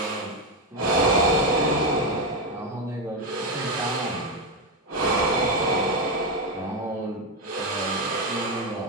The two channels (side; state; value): both; normal; correlation 0.08